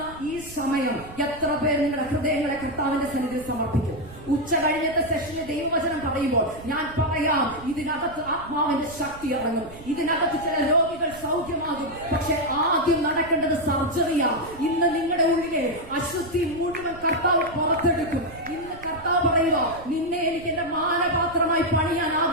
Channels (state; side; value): noise; right; rumble, 18 dB below the sound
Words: ഈ സമയം എത്ര പേർ നിങ്ങളുടെ ഹൃദയങ്ങളെ കർത്താവിന്റെ സന്നിധിയിൽ സമർപ്പിക്കും? ഉച്ച കഴിഞ്ഞത്തെ സെഷനിൽ ദൈവവചനം പറയുമ്പോൾ ഞാൻ പറയാം, ഇതിനകത്ത് ആത്മാവിന്റെ ശക്തി ഇറങ്ങും, ഇതിനകത്ത് ചില രോഗികൾ സൗഖ്യമാകും. പക്ഷെ ആദ്യം നടക്കേണ്ടത് സർജറിയാ. ഇന്ന് നിങ്ങളുടെ ഉള്ളിലെ അശുദ്ധി മുഴുവൻ കർത്താവ് പുറത്തെടുക്കും. ഇന്ന് കർത്താവ് പറയുക, നിന്നെ എനിക്ക് എന്റെ മാനപാത്രമായി പണിയാൻ